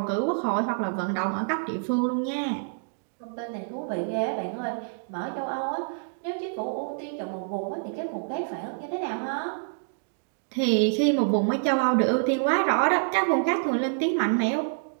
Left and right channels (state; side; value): silent; left; digital silence